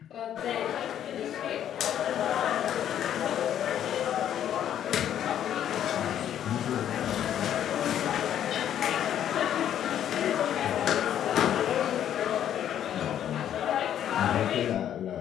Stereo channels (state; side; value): quieter; right; 10.4 dB